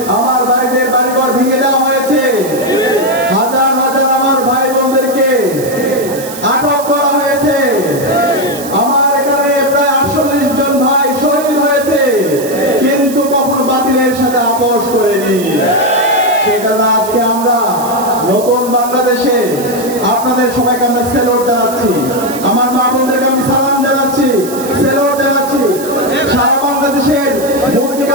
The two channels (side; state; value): right; noise; hiss, 13 dB below the sound